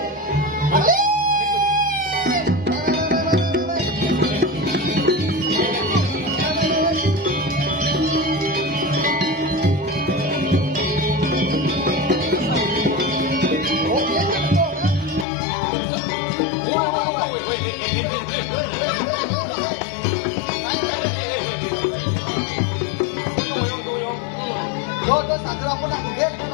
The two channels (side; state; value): right; drops out; at 15.2 s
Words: Dodo sadra apa nak gede?